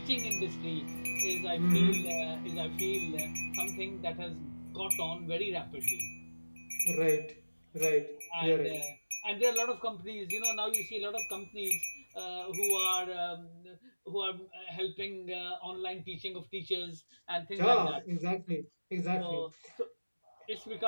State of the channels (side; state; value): both; inverted; correlation -1.00